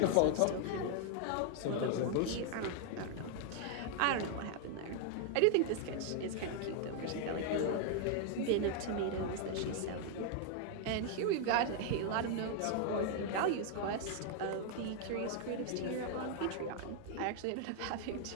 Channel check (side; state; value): both; different; correlation 0.00